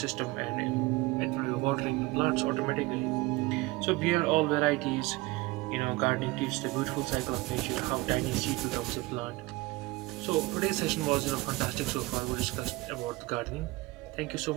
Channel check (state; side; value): quieter; left; 21.7 dB